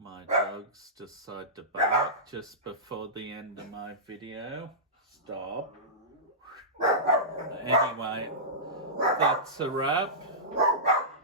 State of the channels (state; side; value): normal; both; correlation -0.18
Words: My dogs decide to bark just before the end of my video. Stop. Anyway, that's a wrap.